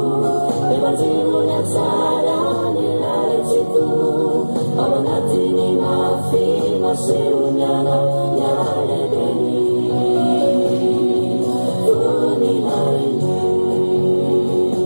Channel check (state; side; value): inverted; both; correlation -1.00